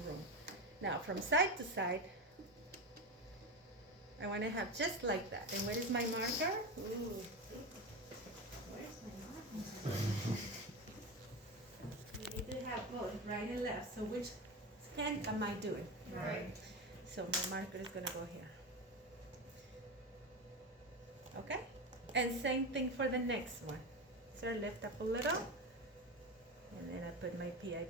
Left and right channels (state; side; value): normal; both; correlation 0.20